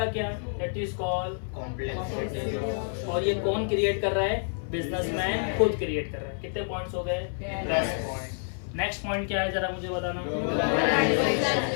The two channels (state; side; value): silent; right; 57 dB below the other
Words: क्या? That is called complex. और ये कौन क्रिएट कर रहा है? बिजनेसमैन खुद क्रिएट कर रहा है। कितने पॉइंट्स हो गए? 10 पॉइंट। नेक्स्ट पॉइंट क्या है जरा मुझे बताना।